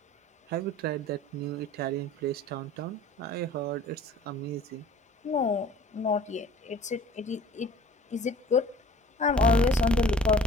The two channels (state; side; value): normal; both; correlation 0.49